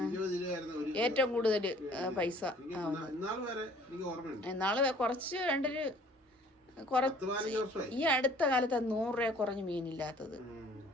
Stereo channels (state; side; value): normal; both; correlation 0.54